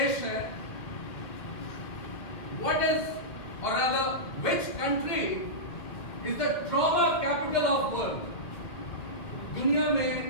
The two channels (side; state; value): right; late; 2.3 ms